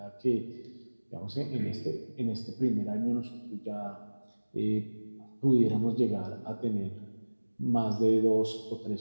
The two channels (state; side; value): inverted; both; correlation -1.00